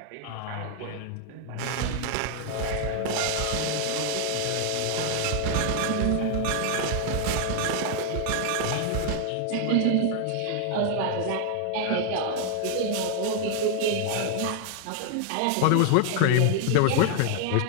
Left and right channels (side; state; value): both; different; correlation 0.00